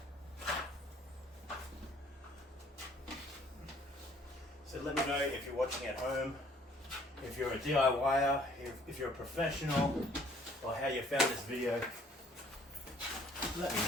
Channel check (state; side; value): normal; both; correlation 0.58